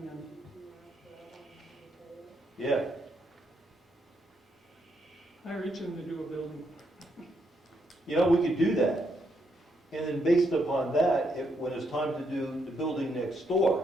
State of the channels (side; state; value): both; normal; correlation 0.77